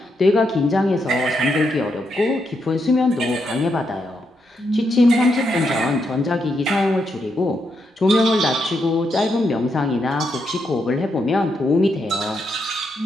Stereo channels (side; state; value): both; normal; correlation 0.81